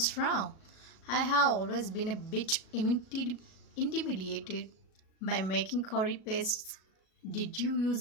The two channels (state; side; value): late; right; 37 ms